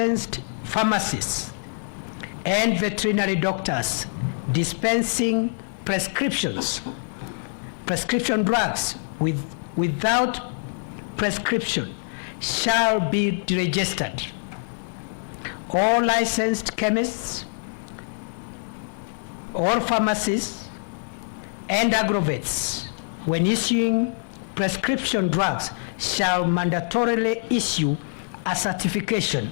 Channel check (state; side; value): silent; right; digital silence